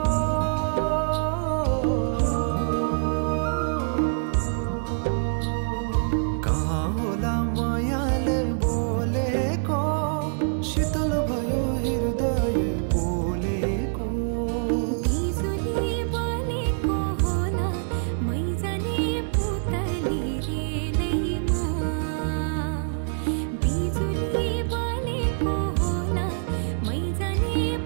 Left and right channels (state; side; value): silent; left; 61 dB below the other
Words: कहाँ होला मायाले बोलेको शीतल भयो हृदय बोलेको बिजुली बलेको होला मै जाने पुतली रेलैमा बिजुली बलेको होला मै जाने